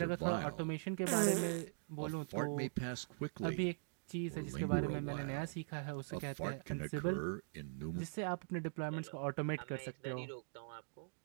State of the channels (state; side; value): silent; left; digital silence